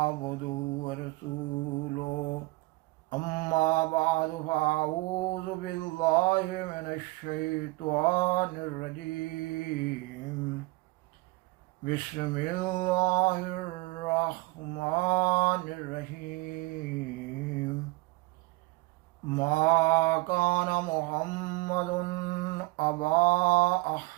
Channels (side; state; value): left; quieter; 22.9 dB